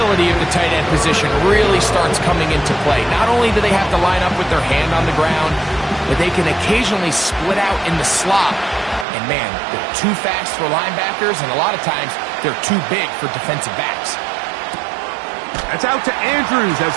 of the tight end position really starts coming into play. Not only do they have to line up with their hand on the ground, but they can occasionally split out in the slot. And man, they're too fast for linebackers, and a lot of times they're too big for defensive backs. That's out to Andrews as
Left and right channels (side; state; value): left; drops out; at 9.1 s